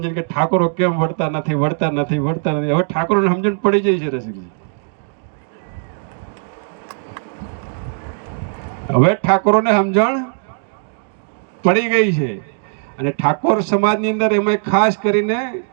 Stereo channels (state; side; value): silent; left; 63 dB below the other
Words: કે ઠાકોરો કેમ વળતા નથી. હવે ઠાકોરોને સમજણ પડી જાય છે રસિકજી. હવે ઠાકોરોને સમજણ પડી ગઈ છે. અને ઠાકોર સમાજની અંદર એમાં ખાસ કરીને